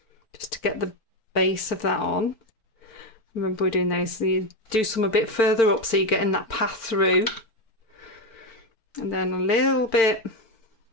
just to get the base of that on. Remember, we're doing those, so you do some a bit further up so you're getting that path through. And then a little bit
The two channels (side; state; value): right; late; 4.5 ms